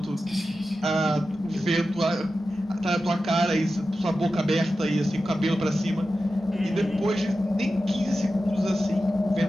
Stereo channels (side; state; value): both; normal; correlation 0.92